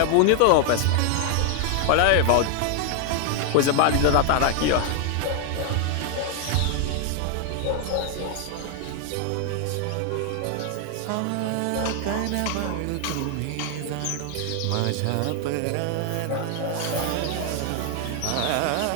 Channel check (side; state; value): both; different; correlation 0.00